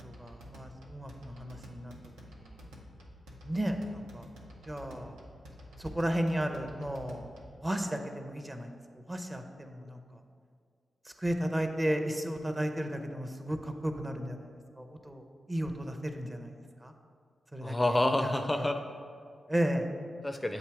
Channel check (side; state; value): both; normal; correlation 0.96